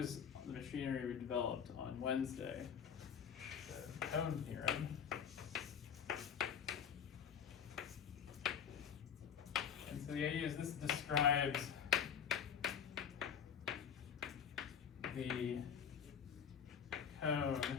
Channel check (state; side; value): quieter; right; 7.8 dB